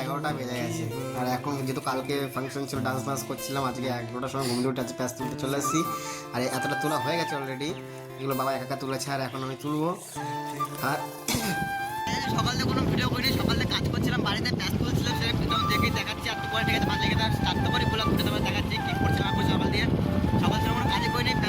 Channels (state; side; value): identical; both; correlation 1.00